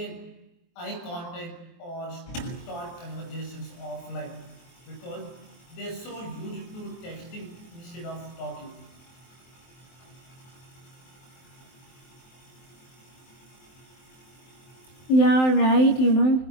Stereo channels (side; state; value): right; late; 23 ms